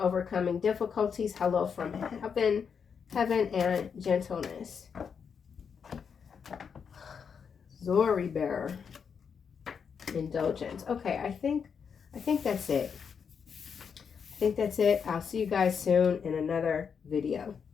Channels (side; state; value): right; quieter; 6.6 dB